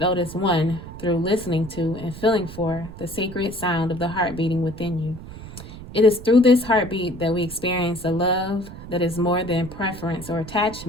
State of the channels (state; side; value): noise; right; rumble, 14 dB below the sound